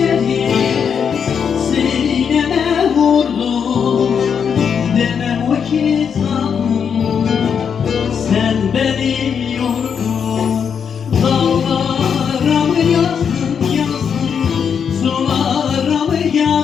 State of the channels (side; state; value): right; quieter; 7.1 dB